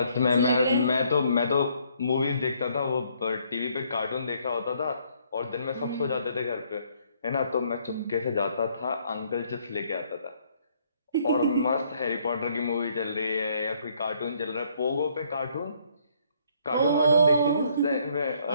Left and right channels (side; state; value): both; inverted; correlation -0.66